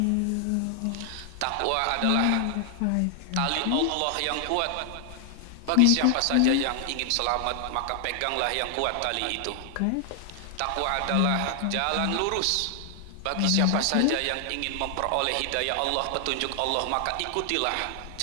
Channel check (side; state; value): both; different; correlation 0.00